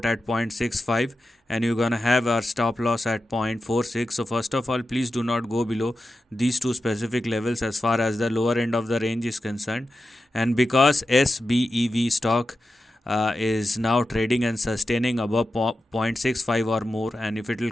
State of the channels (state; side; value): normal; both; correlation 0.91